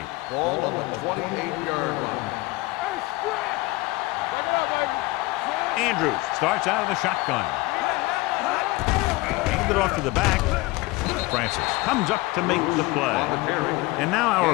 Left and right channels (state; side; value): quieter; right; 21.7 dB